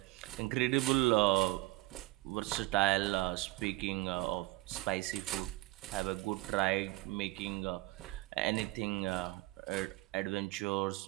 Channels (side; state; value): left; quieter; 20.5 dB